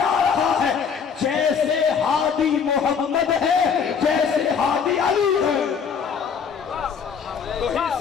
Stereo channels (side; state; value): right; quieter; 6.5 dB